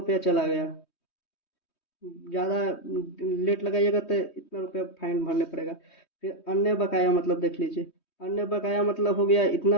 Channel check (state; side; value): late; right; 3.2 ms